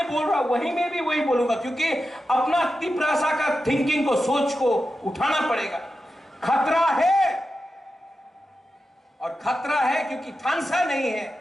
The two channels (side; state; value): both; normal; correlation 0.91